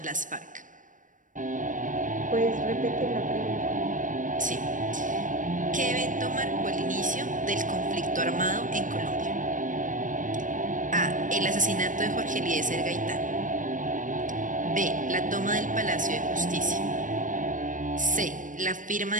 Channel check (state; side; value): late; left; 0.38 ms